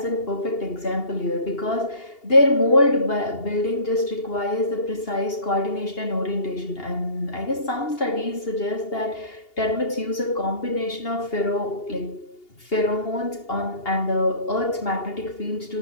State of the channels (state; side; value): late; right; 2.8 ms